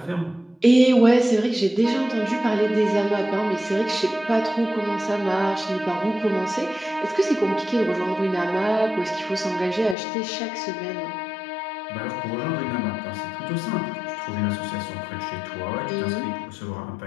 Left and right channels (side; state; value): right; drops out; at 10.0 s